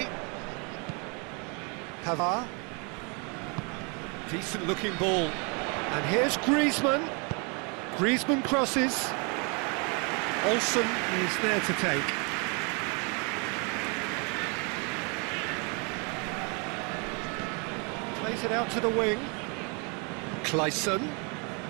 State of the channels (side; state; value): left; quieter; 33.5 dB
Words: Pavard. Decent looking ball. And here's Griezmann. Griezmann crosses. Olsen is there to take. Plays it out to the wing. Clayson.